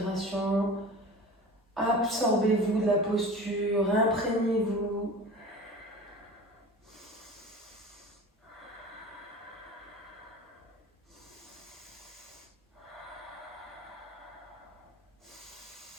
Absorbez-vous de la posture, imprégnez-vous.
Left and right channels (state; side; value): normal; both; correlation 0.37